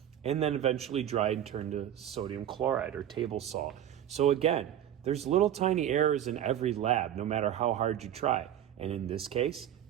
and then eventually dried and turned to sodium chloride or table salt. So again, there's little tiny errors in every lab, no matter how hard you try. And in this case,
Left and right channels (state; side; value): quieter; left; 10.7 dB